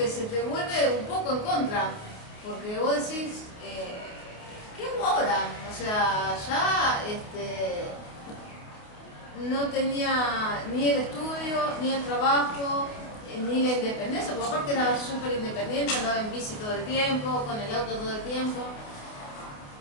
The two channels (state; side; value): late; right; 29 ms